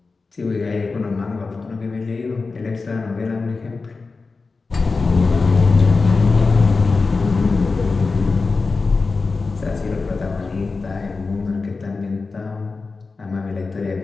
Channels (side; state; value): right; quieter; 4.1 dB